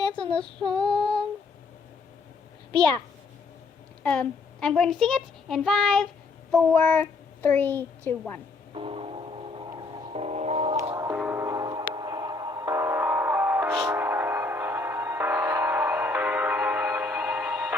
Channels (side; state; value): right; quieter; 3.8 dB